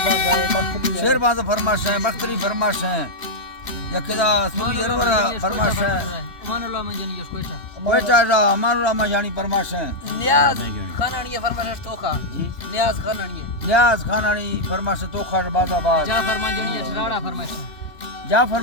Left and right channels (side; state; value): right; late; 3.1 ms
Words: शेरबाज फरमाश है बख्तरी फरमाश है यकदा सूरी अरवरा फरमाश है अमानुल्लाह माजानी कोयटा कोयटा अमानुल्लाह माजानी फरमाश है नियाज खानानी फरमाश तोखा जी नियाज खानानी फरमाश तोखा बाजाबाद जाफर माजानी राड़ा फरमाश जाफर